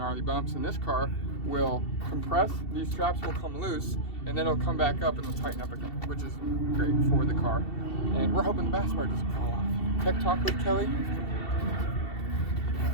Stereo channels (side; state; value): right; late; 2.7 ms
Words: bumps, and this car will compress, these straps will come loose, and then it'll come back up and it'll tighten up again, which is great for the car. And we're hoping the bash bar doesn't fall off. Tech Talk with Kelly.